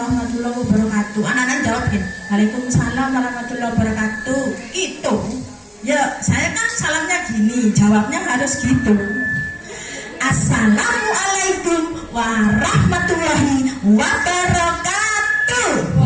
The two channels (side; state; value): both; identical; correlation 1.00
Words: wabarakatuh. Anak-anak jawabin, Waalaikumsalam warahmatullahi wabarakatuh. Itu, ya saya kan salamnya gini, jawabnya harus gitu. Assalamualaikum warahmatullahi wabarakatuh.